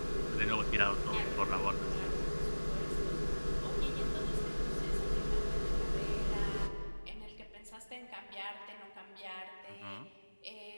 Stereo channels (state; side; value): inverted; both; correlation -1.00